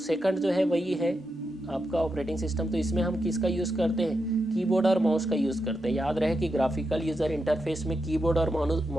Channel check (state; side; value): normal; both; correlation 0.86